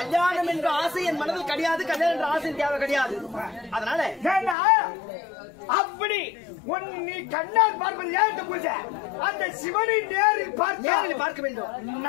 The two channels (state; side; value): drops out; right; at 4.5 s